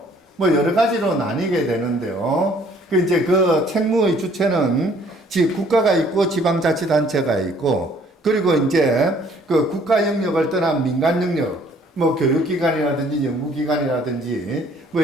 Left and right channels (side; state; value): both; normal; correlation 0.59